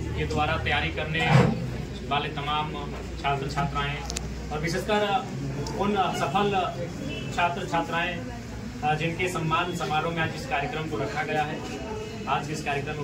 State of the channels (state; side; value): identical; both; correlation 1.00